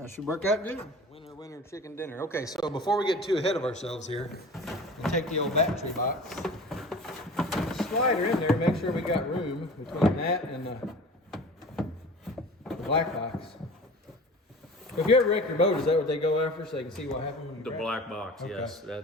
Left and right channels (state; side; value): normal; both; correlation 0.39